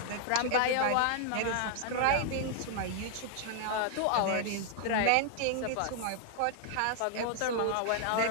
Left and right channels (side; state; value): both; different; correlation 0.00